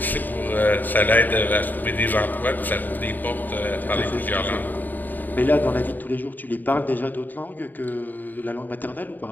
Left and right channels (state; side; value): late; right; 0.088 ms